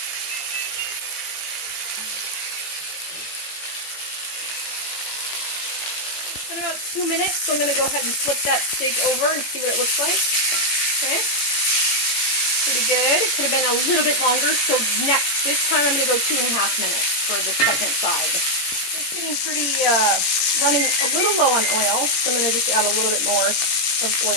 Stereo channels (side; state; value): right; late; 18 ms